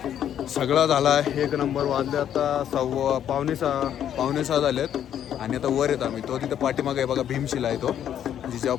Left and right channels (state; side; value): quieter; right; 10.0 dB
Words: सगळं झाला 1 नंबर. वाजले आता पावणे सहा झालेत. आणि आता वर येत आम्ही. तो तिथं पाठीमागे आहे बघा, भीमशिला आहे तो. जेव्हा